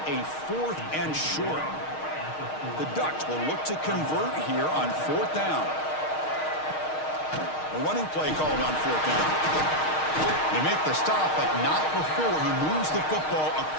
a 4th and short. The Ducks will look to convert here on 4th down. A running play called on 4th down. They make the stop, but not before he moves the football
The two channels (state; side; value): late; right; 6.4 ms